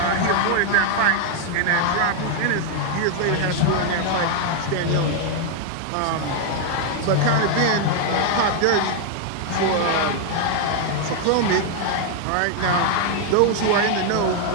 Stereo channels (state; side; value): different; both; correlation 0.00